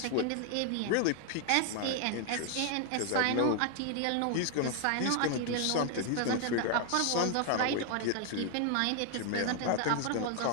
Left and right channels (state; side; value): different; both; correlation 0.00